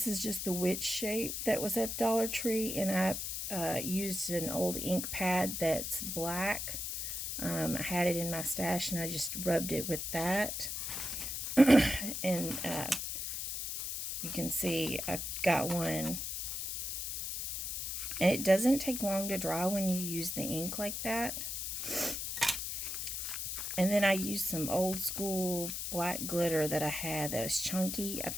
is just the witch shape that was at Dollar Tree, and I used an old ink pad that's black. I had it in my stash and I just rubbed it with that. And you can see I've got one. And it doesn't take long to dry when you use the ink like that. And then I used some old school black glitter that I had that was chunky. I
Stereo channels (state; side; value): noise; left; hiss, 3 dB below the sound